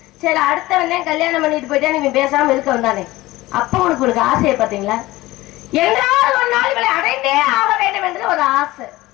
சரி அடுத்த வந்தேன் கல்யாணம் பண்ணிட்டு போயிட்டா நீங்க பேசாம இருக்க வந்தானே, அப்ப உனக்கு ஆசையை பாத்தீங்களா? என்றால் ஒரு நாள் இவளை அடைந்தே ஆக வேண்டும் என்று ஒரு ஆசை,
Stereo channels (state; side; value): quieter; right; 18.5 dB